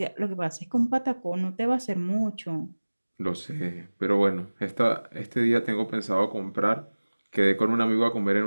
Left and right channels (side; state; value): both; inverted; correlation -1.00